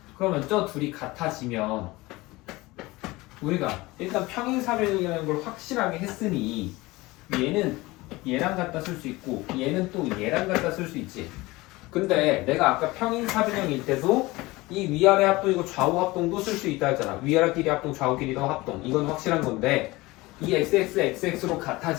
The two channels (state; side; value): quieter; right; 20.9 dB